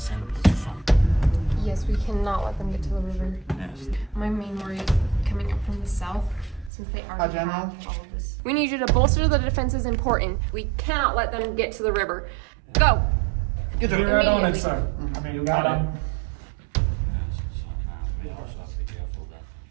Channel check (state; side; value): drops out; left; at 6.7 s